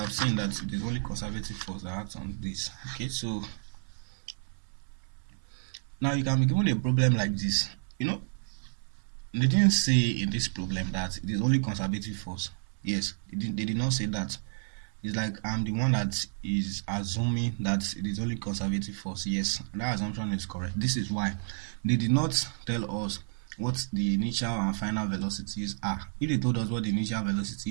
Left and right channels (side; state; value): left; silent; 57 dB below the other